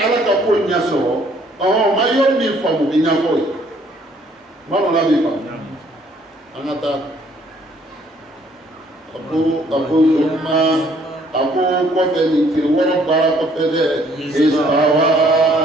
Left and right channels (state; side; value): normal; both; correlation 0.63